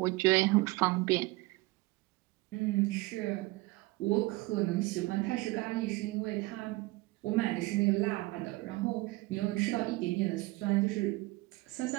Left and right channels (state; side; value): quieter; left; 21.6 dB